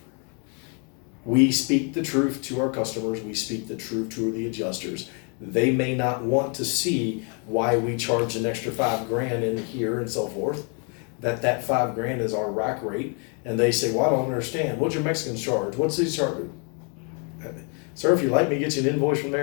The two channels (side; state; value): right; quieter; 37.7 dB